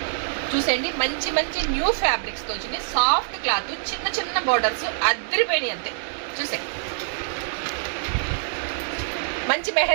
చూసేయండి. మంచి మంచి న్యూ ఫ్యాబ్రిక్స్తో వచ్చినాయి. సాఫ్ట్ క్లాత్, చిన్న చిన్న బోర్డర్స్ అద్దరిపోయినాయి అంతే. చూసే మంచి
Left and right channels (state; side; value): silent; left; digital silence